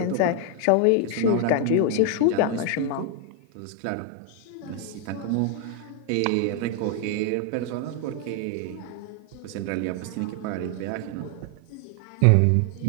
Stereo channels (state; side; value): different; both; correlation 0.00